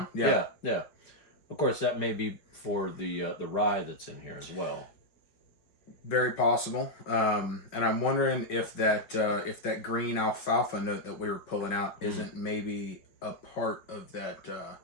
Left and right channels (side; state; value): right; late; 5.2 ms